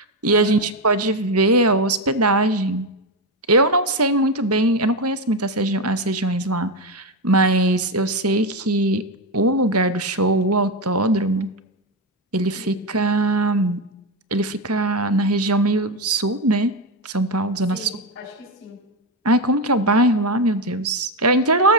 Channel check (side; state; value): both; normal; correlation 0.11